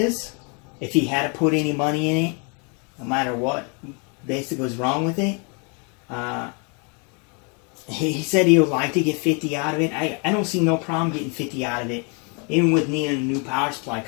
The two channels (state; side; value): quieter; right; 35.5 dB